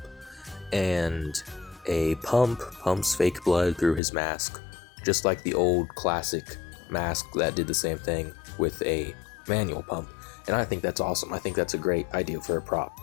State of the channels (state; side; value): drops out; right; at 4.0 s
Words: and a pump pumps fake blood through his mask, just like the old classic mask that did the same thing with a manual pump. And I think that's awesome. I think that's a great idea for a prop.